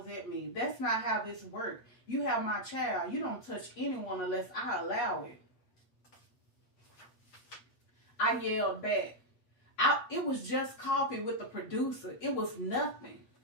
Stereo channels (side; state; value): right; late; 8.2 ms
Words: at me. That's not how this works. You have my child. You don't touch anyone unless I allow it. I yelled back. It was just coffee with the producer. It was nothing.